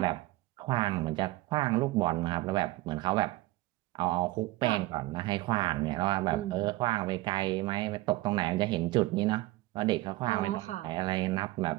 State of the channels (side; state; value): left; quieter; 18.6 dB